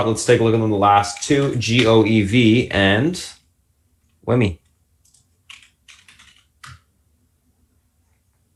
Let's take a look at the last two, GOEV and WIMI.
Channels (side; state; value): both; identical; correlation 1.00